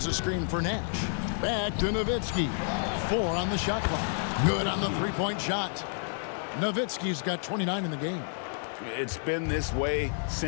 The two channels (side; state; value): right; silent; 58 dB below the other